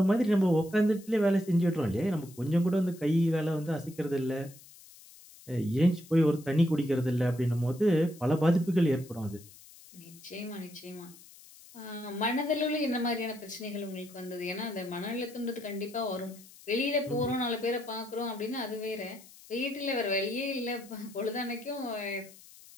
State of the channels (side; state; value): left; noise; hiss, 21 dB below the sound